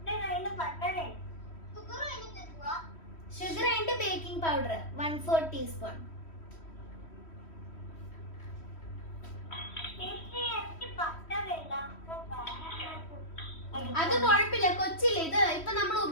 Sugar and baking powder 1/4 teaspoon. അത് കുഴപ്പമില്ല, കൊച്ചില്ല. ഇത് ഇപ്പൊ നമ്മൾ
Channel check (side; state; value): right; late; 3.1 ms